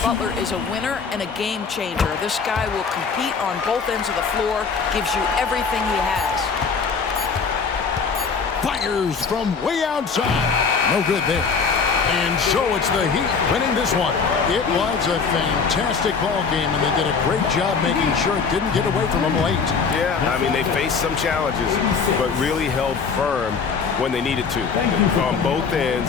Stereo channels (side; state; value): right; quieter; 5.4 dB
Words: Butler is a winner and a game changer. This guy will compete on both ends of the floor, gives you everything he has. Fires from way outside. No good there. And so it's the Heat winning this one. It was a fantastic ball game, and they did a great job making sure it didn't get away from them late. Yeah, I mean, they faced some challenges, but really held firm when they needed to. On both